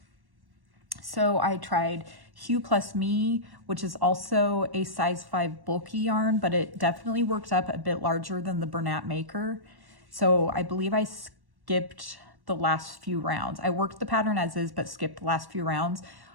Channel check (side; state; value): left; late; 1.1 ms